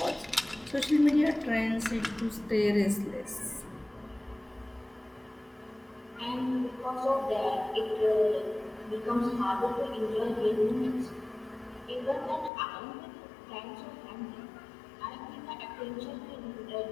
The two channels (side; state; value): right; drops out; at 12.5 s